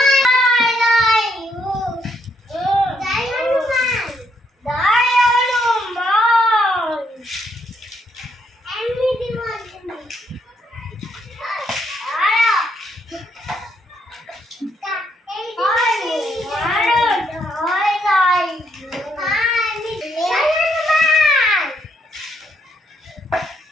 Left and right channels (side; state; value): both; normal; correlation 0.74